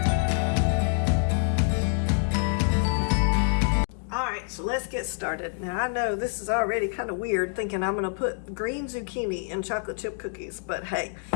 All right, so let's get started. Now I know this is already kind of weird thinking I'm gonna put green zucchini in chocolate chip cookies, but hey,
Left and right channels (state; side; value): silent; right; 57 dB below the other